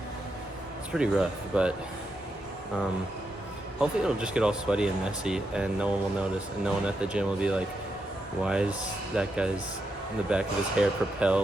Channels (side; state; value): both; normal; correlation 0.84